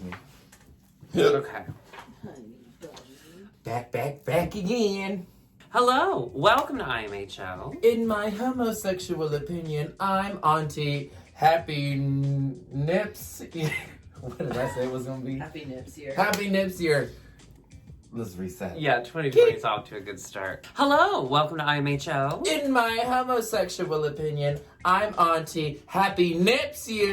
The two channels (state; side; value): identical; both; correlation 1.00